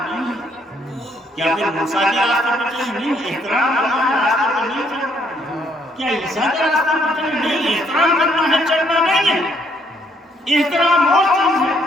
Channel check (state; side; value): normal; both; correlation 0.68